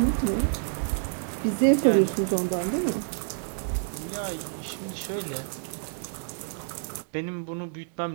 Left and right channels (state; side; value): silent; left; digital silence